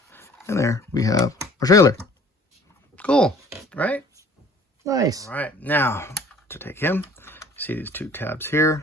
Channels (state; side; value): normal; both; correlation 0.51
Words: And there we have our trailer. Cool, right? Nice. All right, now to take him, see these two tabs